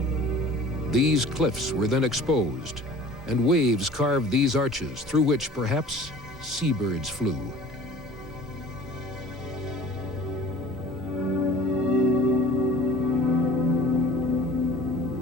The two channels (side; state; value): both; normal; correlation 0.46